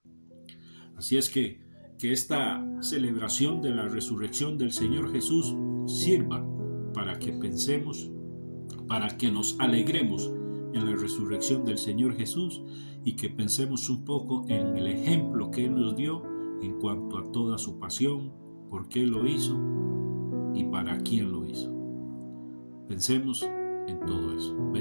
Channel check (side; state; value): both; inverted; correlation -1.00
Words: Así es que esta celebración de la resurrección del Señor Jesús sirva para que pensemos, para que nos alegremos en la resurrección del Señor Jesús y que pensemos un poco en el ejemplo que Él nos dio en cuanto a toda su pasión, por qué lo hizo y para quién lo hizo. Pensemos en todo eso.